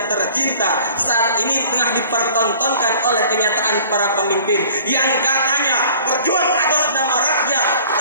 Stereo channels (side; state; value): both; inverted; correlation -0.49